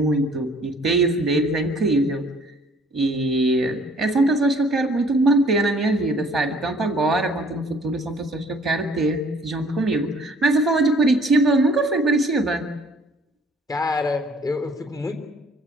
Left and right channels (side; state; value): both; normal; correlation 0.57